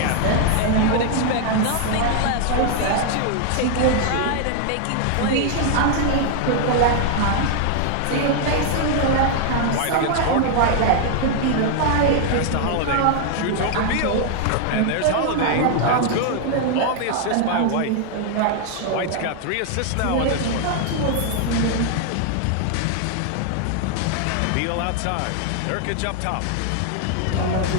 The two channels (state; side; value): different; both; correlation 0.00